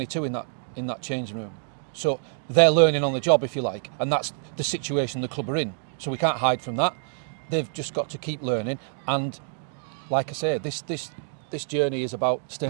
in that changing room. So they're learning on the job, if you like, and that's the situation the club are in. So we can't hide from that. They've just got to keep learning. And like I say, this journey is about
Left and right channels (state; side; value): silent; left; 60 dB below the other